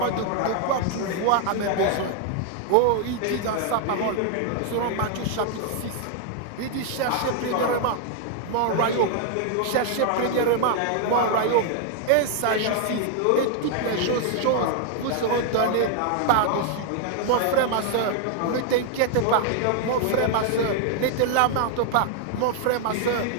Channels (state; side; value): different; both; correlation 0.00